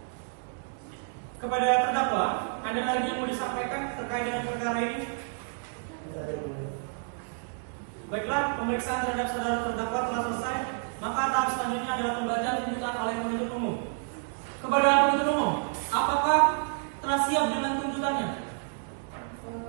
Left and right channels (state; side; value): silent; left; 58 dB below the other